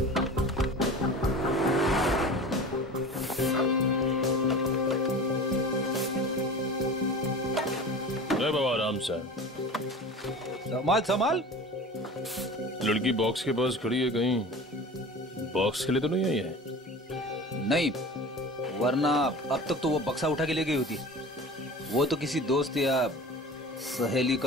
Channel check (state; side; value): normal; both; correlation 0.36